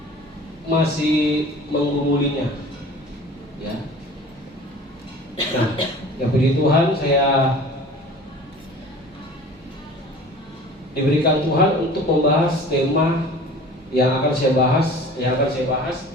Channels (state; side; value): normal; both; correlation 0.43